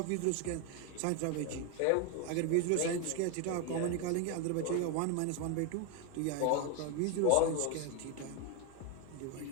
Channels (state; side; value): different; both; correlation 0.01